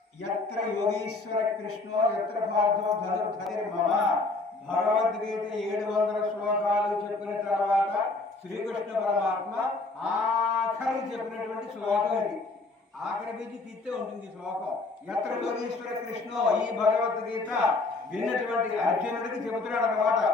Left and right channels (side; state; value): right; quieter; 3.5 dB